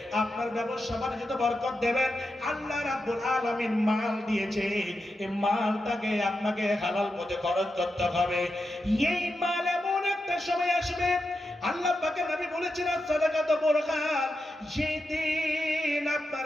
আপনার ব্যবসা বাণিজ্যে বরকত দেবেন। আল্লাহ রাব্বুল আলামিন মাল দিয়েছে, এই মালটাকে আপনাকে হালাল পথে খরচ করতে হবে। এই মাল এমন একটা সময় আসবে, আল্লাহ পাকের নবী বলেছেন সাদাকাত বুরহান, যেই দিন আপনার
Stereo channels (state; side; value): normal; both; correlation 0.88